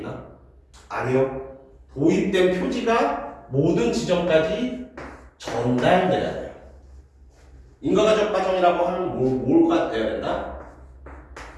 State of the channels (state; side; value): identical; both; correlation 1.00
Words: 아니요. 도입된 표지가 모든 지점까지 전달돼야 돼요. 인과적 과정이라고 하면 뭐가 돼야 된다?